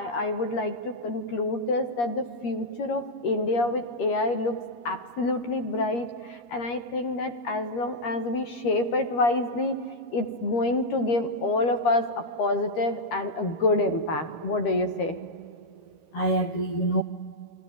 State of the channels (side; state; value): right; late; 13 ms